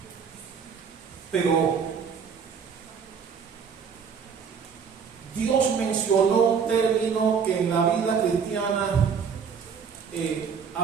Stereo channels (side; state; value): left; quieter; 6.4 dB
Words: Pero Dios mencionó un término que en la vida cristiana